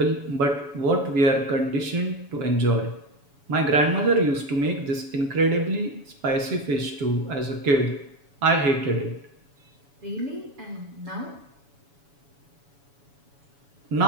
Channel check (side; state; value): left; late; 7.1 ms